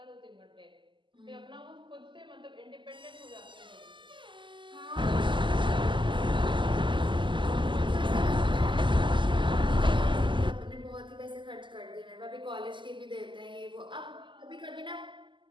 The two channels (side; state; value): left; late; 0.24 ms